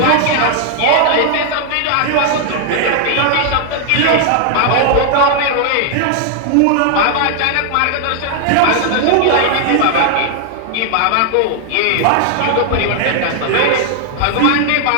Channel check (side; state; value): both; different; correlation 0.00